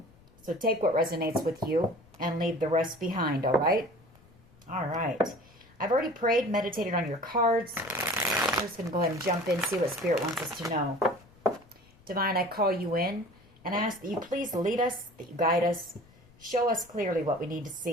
So take what resonates with you and leave the rest behind, all right? All right. I've already prayed, meditated on your cards. I'm just going to go ahead and jump in, see what Spirit wants us to know. Divine, I call you in and ask that you please lead us, that you guide us. Show us clearly what we need to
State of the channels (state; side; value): noise; left; rumble, 27 dB below the sound